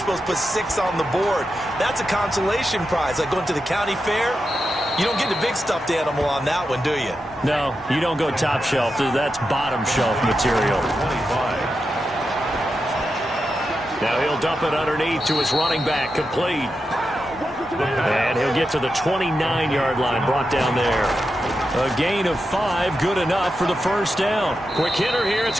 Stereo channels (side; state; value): both; normal; correlation 0.88